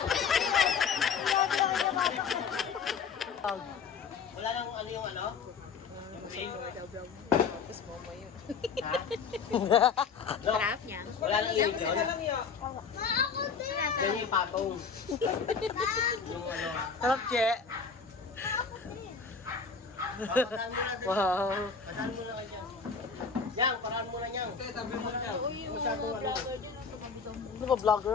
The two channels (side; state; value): right; quieter; 5.7 dB